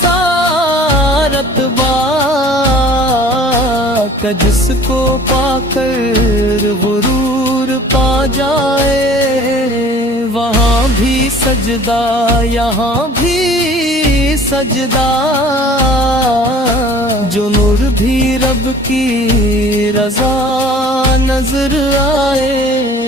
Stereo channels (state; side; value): normal; both; correlation 0.48